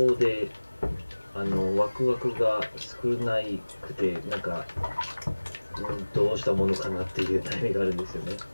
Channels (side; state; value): both; inverted; correlation -1.00